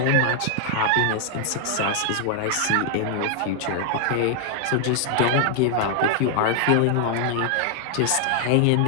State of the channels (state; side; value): different; both; correlation 0.00